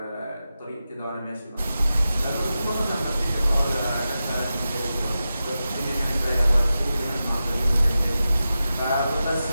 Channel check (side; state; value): both; inverted; correlation -0.92